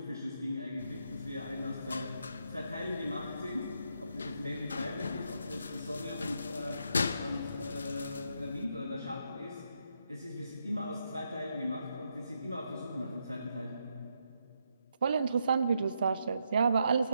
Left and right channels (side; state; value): both; inverted; correlation -0.80